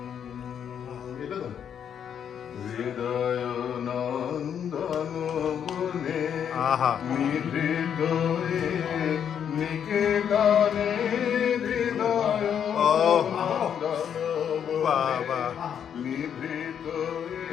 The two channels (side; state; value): right; quieter; 8.5 dB